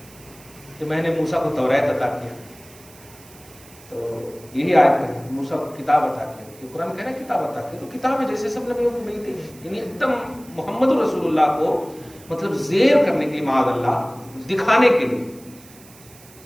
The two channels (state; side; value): noise; right; hiss, 23 dB below the sound